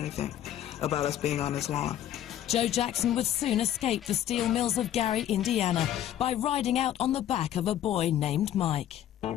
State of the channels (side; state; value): right; quieter; 11.5 dB